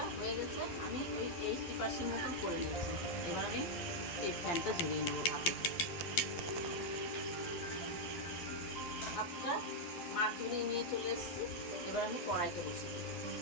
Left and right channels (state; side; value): late; right; 12 ms